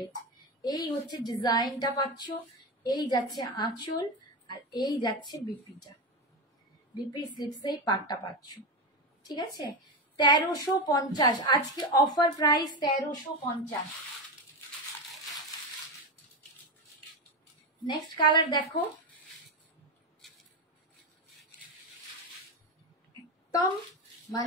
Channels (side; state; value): both; normal; correlation 0.16